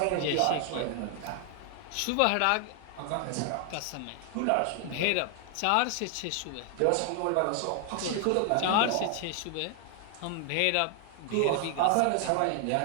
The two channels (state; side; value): different; both; correlation 0.00